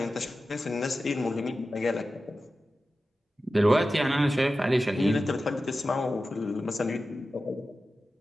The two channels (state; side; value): normal; both; correlation 0.93